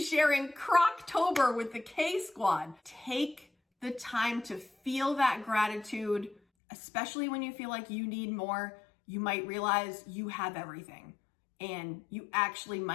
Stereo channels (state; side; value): drops out; right; at 6.4 s